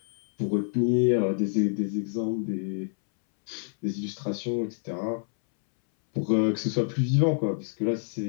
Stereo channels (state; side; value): silent; right; 60 dB below the other